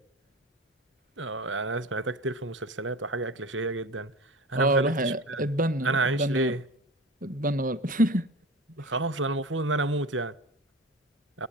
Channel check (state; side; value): normal; both; correlation 0.32